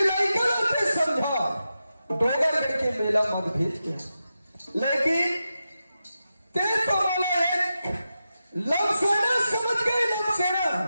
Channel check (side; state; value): both; inverted; correlation -0.90